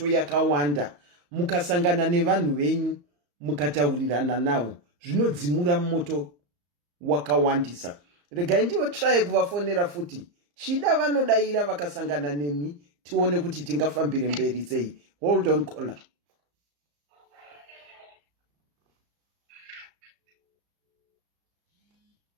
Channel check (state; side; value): late; left; 34 ms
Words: yakawanda mukasangana nevanhu venyu mukataurirana navo zvinodzimura moto wakawandisa regai ndiwo try kuvafonera futi chida vanodaira vakasangana nemi tione kuti tingafambire mberi sei hold on caller